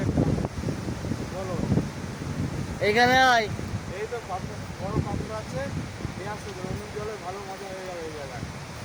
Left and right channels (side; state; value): both; identical; correlation 1.00